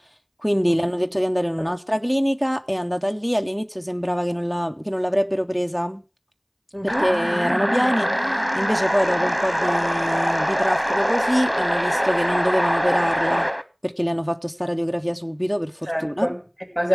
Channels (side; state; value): both; identical; correlation 1.00